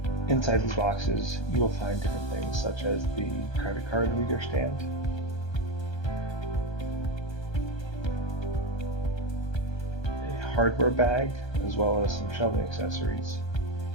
Inside these boxes, you will find different things such as the credit card reader stand, a hardware bag, as well as some shelving accessories,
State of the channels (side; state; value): right; late; 1.3 ms